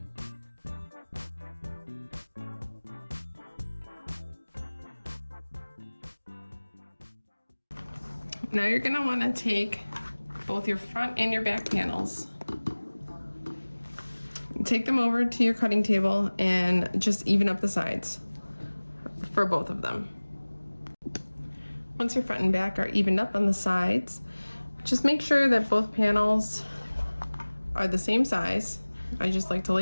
Now you're gonna wanna take both your front and your back panels. Take them over to your cutting table and just even up the sides for both of them. Once your front and back are evened up on the sides, just make sure that both panels are the same size. I just like to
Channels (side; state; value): both; inverted; correlation -1.00